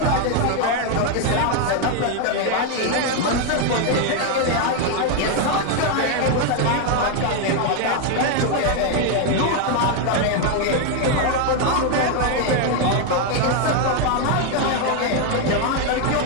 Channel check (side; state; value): both; different; correlation 0.01